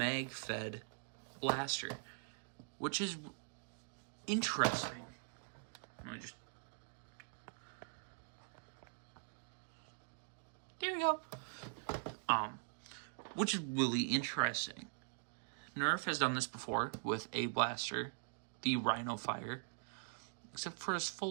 blaster, which is interesting. Let me just... There we go. Which is really interesting. Nerf has done this before with a blaster, the Rhino Fire, except for his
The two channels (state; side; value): silent; left; digital silence